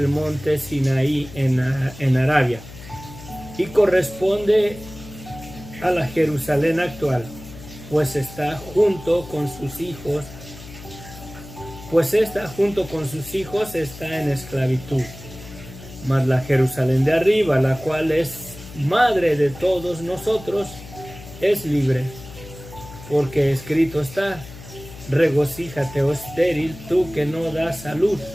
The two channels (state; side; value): noise; left; hum, 16 dB below the sound